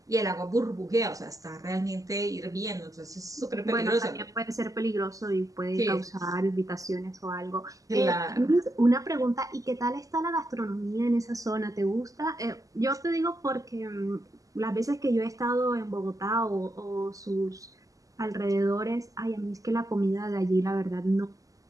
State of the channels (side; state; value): left; late; 0.17 ms